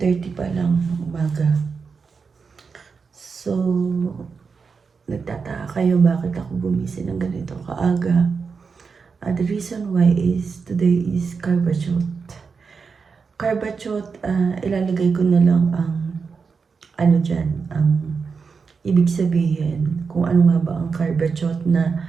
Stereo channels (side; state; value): left; quieter; 5.3 dB